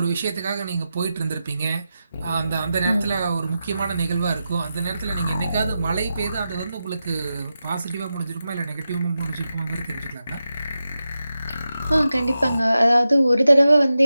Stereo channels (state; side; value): inverted; both; correlation -0.91